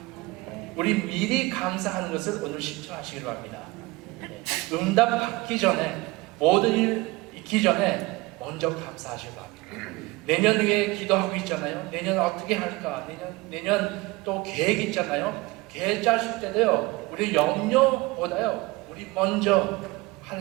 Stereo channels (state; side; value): quieter; left; 22.2 dB